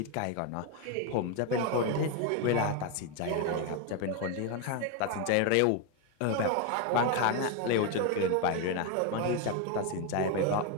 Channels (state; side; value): different; both; correlation 0.02